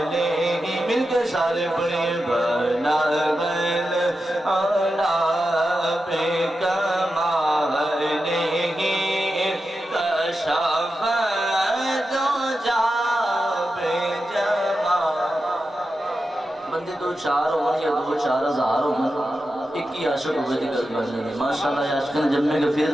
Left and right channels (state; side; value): normal; both; correlation 0.90